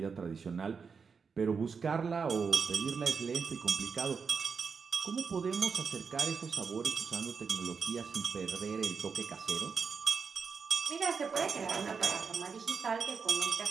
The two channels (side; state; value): left; quieter; 5.6 dB